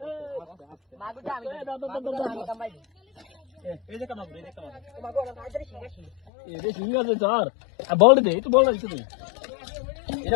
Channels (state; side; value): drops out; right; at 6.2 s